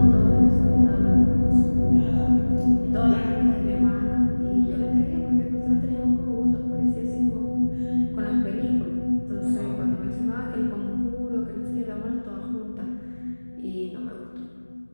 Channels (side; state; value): both; inverted; correlation -1.00